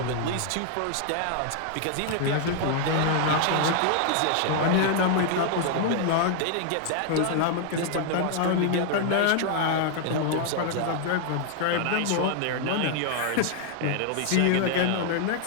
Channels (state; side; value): different; both; correlation 0.00